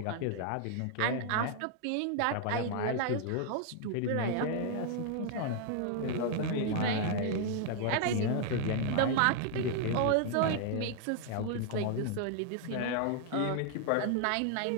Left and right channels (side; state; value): both; different; correlation 0.00